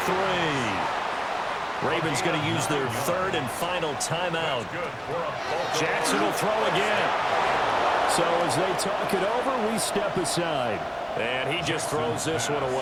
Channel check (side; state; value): both; identical; correlation 1.00